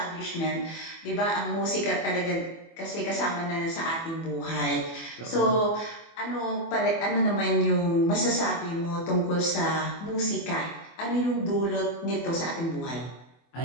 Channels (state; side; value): late; right; 24 ms